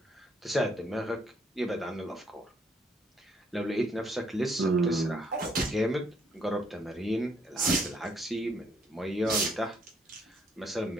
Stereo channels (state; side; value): normal; both; correlation 0.69